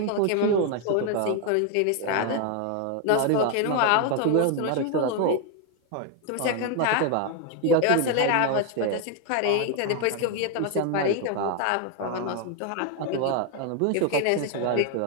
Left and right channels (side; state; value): both; different; correlation 0.01